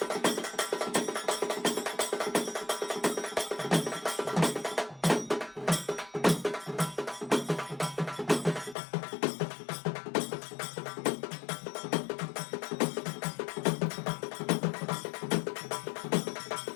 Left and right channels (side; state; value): right; drops out; at 8.8 s